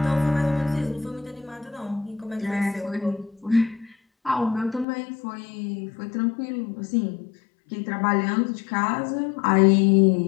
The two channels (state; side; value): drops out; right; at 4.9 s